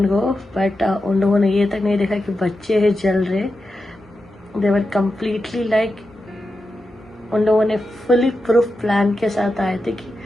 go, but उन लोगों ने ये तक नहीं देखा कि बच्चे हैं जल रहे। दे वर कम्प्लीटली लाइक, उन लोगों ने फुली प्रूफ प्लान के साथ आए थे कि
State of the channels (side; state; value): both; normal; correlation 0.89